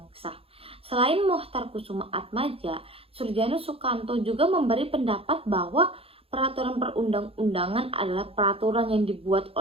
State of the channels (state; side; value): late; left; 0.27 ms